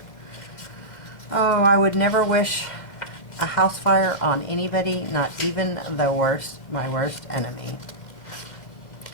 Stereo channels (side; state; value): right; late; 2.1 ms